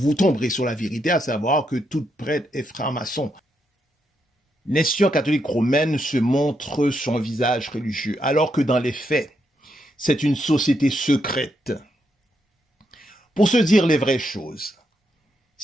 tomberez sur la vérité, à savoir que toute prêtre est franc-maçon. L'institution catholique romaine se montre son visage religieux, alors que dans les faits, c'est une société secrète. Pour se dire les vraies choses,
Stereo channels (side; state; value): both; normal; correlation 0.80